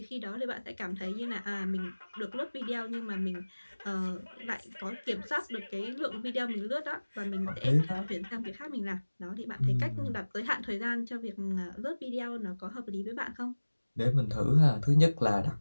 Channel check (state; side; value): inverted; both; correlation -1.00